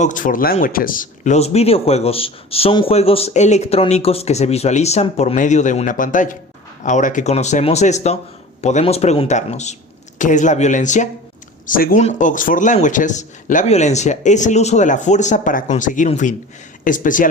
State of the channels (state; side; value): normal; both; correlation 0.38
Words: Languages, los videojuegos son juegos electrónicos que se visualizan por medio de una pantalla. Ahora que conocemos esto, podemos preguntarnos, ¿qué es la violencia? Según Oxford Languages, la violencia es el uso de la fuerza para conseguir un fin,